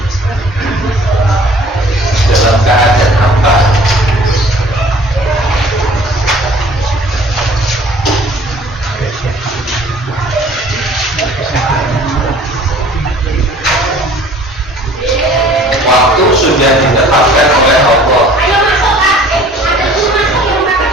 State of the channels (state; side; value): normal; both; correlation 0.51